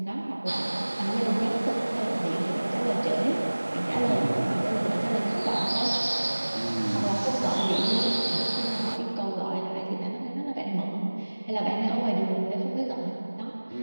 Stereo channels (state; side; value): inverted; both; correlation -1.00